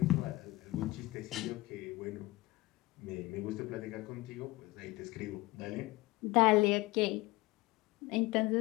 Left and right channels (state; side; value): quieter; right; 19.8 dB